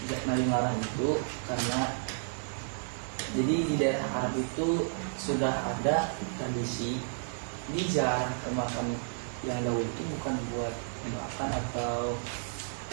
Nabi melarang itu karena jadi di daerah Arab itu sudah ada tradisi dijarah ke makam yang dahulu itu bukan buat makan atau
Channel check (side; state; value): left; silent; digital silence